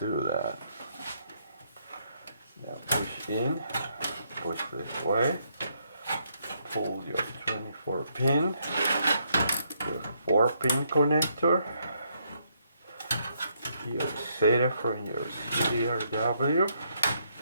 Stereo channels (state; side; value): inverted; both; correlation -0.74